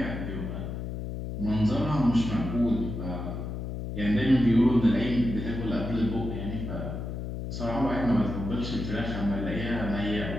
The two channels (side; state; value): left; noise; hum, 5 dB below the sound